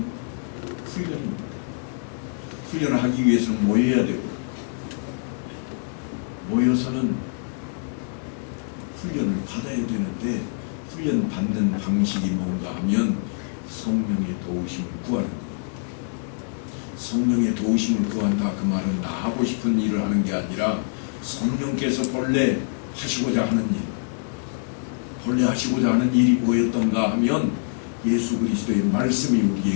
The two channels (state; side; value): silent; right; digital silence